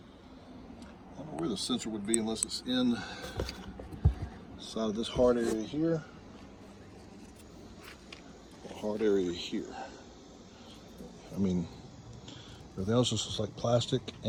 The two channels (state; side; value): identical; both; correlation 1.00